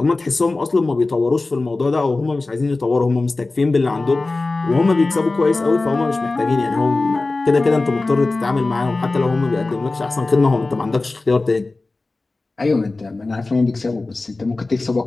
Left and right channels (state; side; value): quieter; right; 3.3 dB